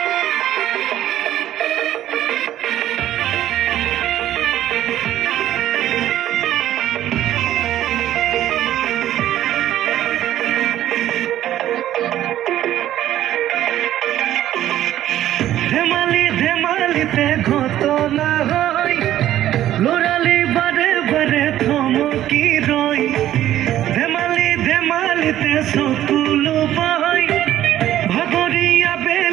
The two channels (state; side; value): quieter; left; 12.7 dB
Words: ধেমালি ধেমালিতে ঘটনা হয়, লৰালি বাৰে বাৰে থমকি ৰয়। ধেমালি ধেমালিতে চকুলো পায়, ভাগৰীয়া